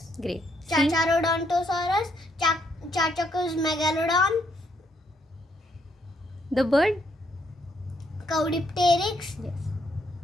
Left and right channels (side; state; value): both; normal; correlation 0.73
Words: Great. C? Chacharodontosaurus, Chachacus megalodon, The bird? Caudipteryx, Yes.